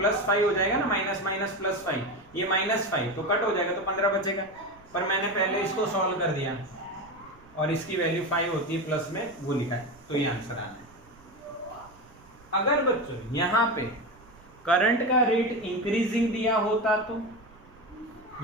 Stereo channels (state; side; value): noise; right; rumble, 25 dB below the sound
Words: 5 हो जाएगा ना, माइनस माइनस प्लस 5, ये -5 तो कट हो जाएगा, तो 15 बचेगा। पर मैंने पहले इसको सॉल्व कर दिया और इसकी वैल्यू 5 होती है प्लस में, वो लिखा है, तो ये आंसर आना है। अगर बच्चों यहाँ पे करंट का रेट इंक्रीजिंग दिया होता तो